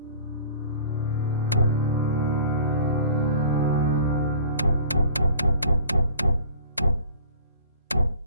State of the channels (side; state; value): both; inverted; correlation -0.46